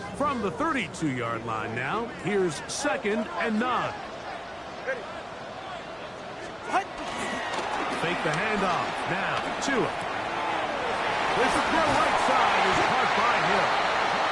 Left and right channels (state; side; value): identical; both; correlation 1.00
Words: From the 32-yard line now, here's 2nd and 9. Fake the handoff. Now, Tua. This throw right side is caught by Hill.